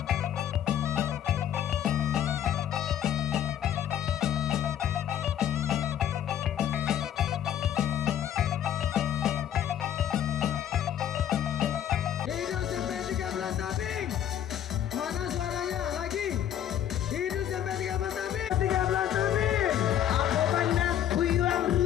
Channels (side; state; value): right; quieter; 10.4 dB